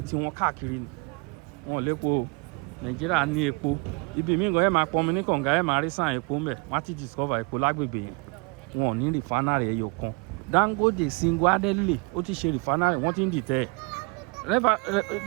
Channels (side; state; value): left; quieter; 32.2 dB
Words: wọn káàkiri ni wọn lépo o Nàìjíríà ní epo ibi míì gan ẹ máa pọnmi ní kànga ẹ máa rí sàn epo ńbẹ wọ́n ti discover epo lágbègbè yẹn wọn ò ní refinery ẹyọ kan Dangote single-handedly ó ti ṣe refinery wọ́n ti ń dìtẹ̀